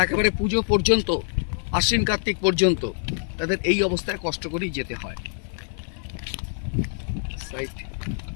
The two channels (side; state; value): right; silent; 55 dB below the other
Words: একেবারে পুজো পর্যন্ত, আশ্বিন কার্তিক পর্যন্ত তাদের এই অবস্থায় কষ্ট করেই যেতে হয়।